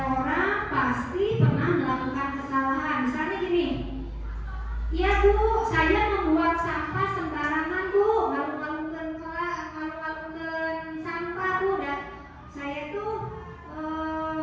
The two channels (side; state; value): both; identical; correlation 1.00